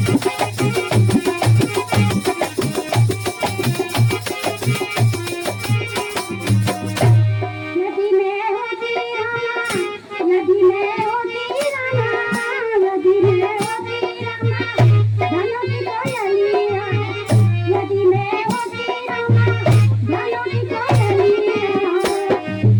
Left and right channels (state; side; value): identical; both; correlation 1.00